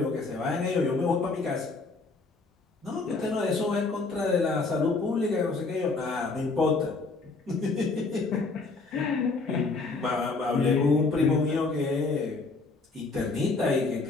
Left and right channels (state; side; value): quieter; right; 3.8 dB